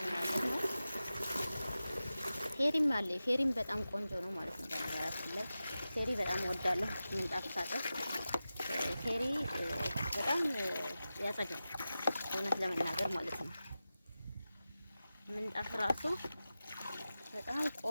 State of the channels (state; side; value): inverted; both; correlation -0.94